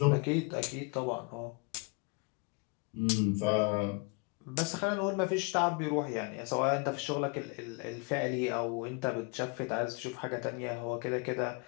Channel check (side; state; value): right; quieter; 31.6 dB